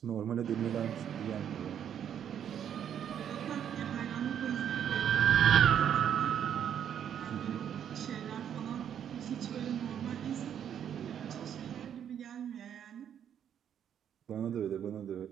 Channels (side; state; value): left; quieter; 9.1 dB